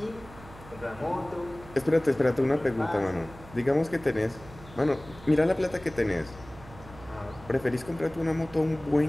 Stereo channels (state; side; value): noise; right; hum, 19 dB below the sound